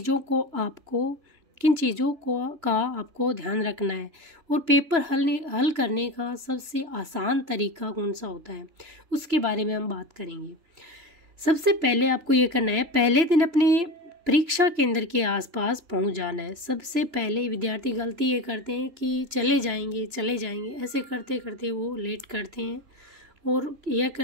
का आपको ध्यान रखना है और पेपर हल करने का सबसे आसान तरीका कौन सा होता है, उसके बारे में हम बात करेंगे। सबसे पहले आपको ये करना है, पहले दिन अपने परीक्षा केंद्र के आसपास पहुंच जाना है। सबसे पहले विद्यार्थी गलती ये करते हैं कि चले जाएंगे ऐसे करते करते वो लेट करते हैं और यह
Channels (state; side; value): late; left; 3.0 ms